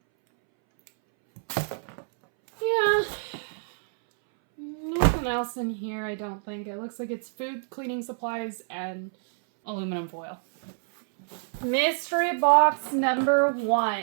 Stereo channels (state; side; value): silent; left; 60 dB below the other